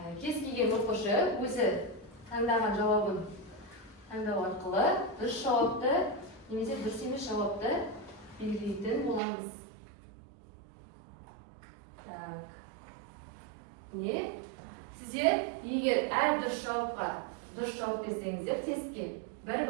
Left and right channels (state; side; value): drops out; left; at 9.2 s